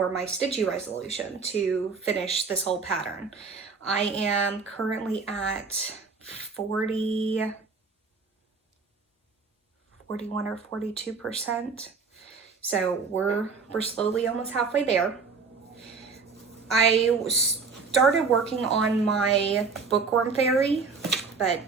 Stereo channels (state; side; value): quieter; left; 4.8 dB